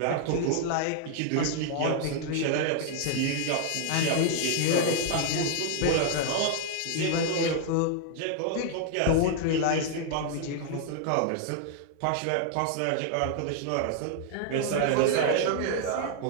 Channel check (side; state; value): both; different; correlation 0.00